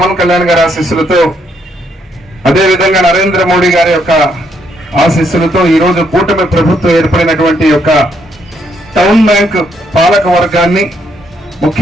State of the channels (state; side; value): normal; both; correlation 0.73